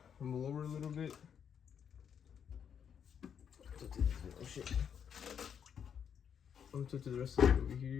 I'm gonna lower a little bit. Oh shit. I'm gonna touch the rest of it over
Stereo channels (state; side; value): quieter; right; 7.9 dB